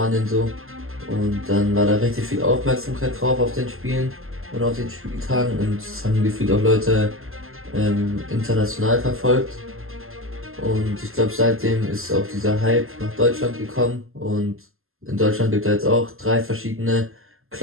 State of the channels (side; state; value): left; late; 0.61 ms